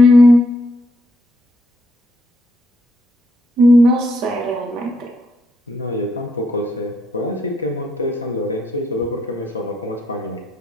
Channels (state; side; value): normal; both; correlation 0.76